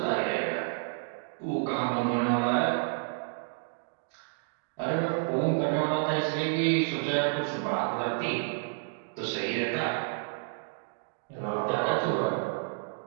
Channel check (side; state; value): left; silent; digital silence